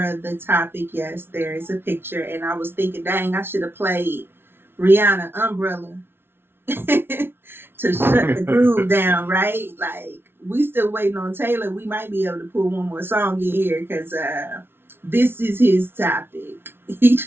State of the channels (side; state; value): left; late; 0.11 ms